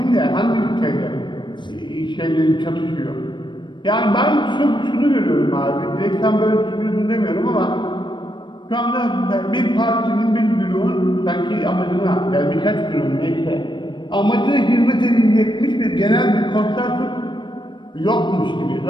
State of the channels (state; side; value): late; right; 0.22 ms